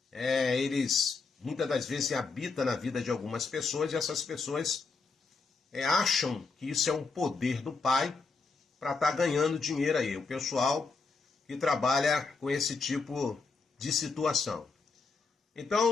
eles muitas das vezes habitam na vida de algumas pessoas e essas pessoas acham que isso é um poder do Pai para estar ganhando dinheiro aí. O pessoal que trabalha com esse tipo de situação.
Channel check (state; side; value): quieter; right; 4.4 dB